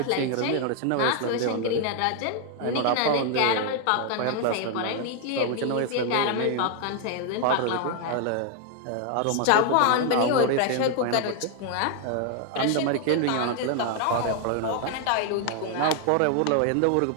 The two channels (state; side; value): different; both; correlation 0.00